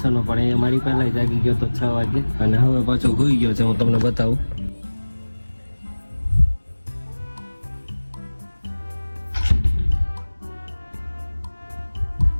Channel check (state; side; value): inverted; both; correlation -1.00